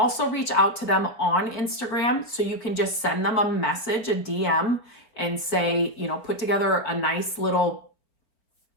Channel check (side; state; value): right; late; 4.2 ms